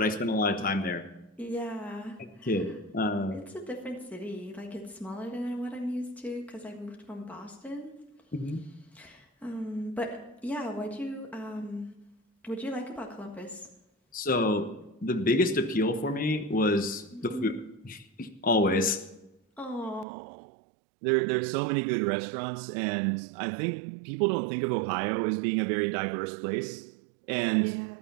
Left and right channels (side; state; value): left; drops out; at 20.1 s